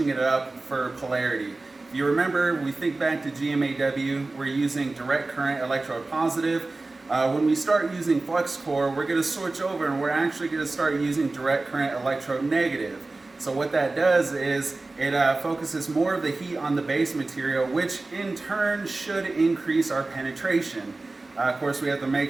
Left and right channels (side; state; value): left; quieter; 3.3 dB